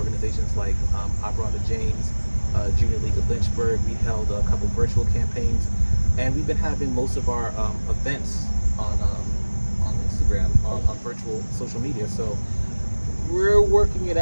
like Opera on the James, Junior League of Lynchburg. We held a couple virtual campaigns, and we've been having most of our events on Instagram, on virtual social media. So we're working it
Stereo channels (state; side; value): inverted; both; correlation -1.00